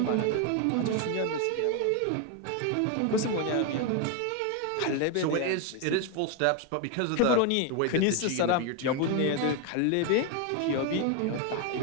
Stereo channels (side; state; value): both; different; correlation 0.01